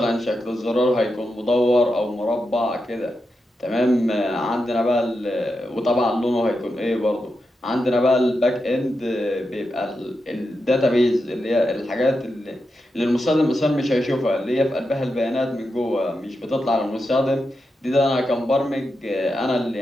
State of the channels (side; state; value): both; normal; correlation 0.87